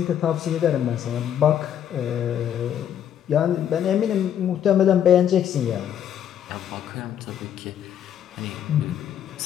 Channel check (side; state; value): right; quieter; 9.7 dB